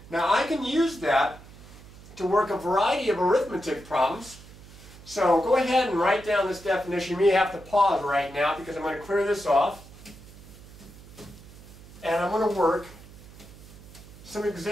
Now I can use that to work a variety of arithmetic problems. So go ahead and write down this definition. You may have to pause right now because I'm going to clear this off. And I'm going to work some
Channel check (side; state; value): right; noise; hum, 19 dB below the sound